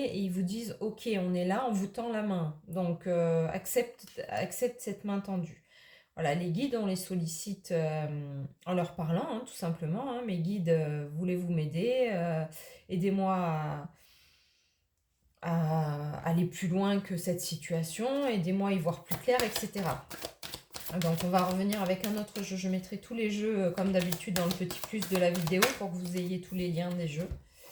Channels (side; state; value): both; identical; correlation 1.00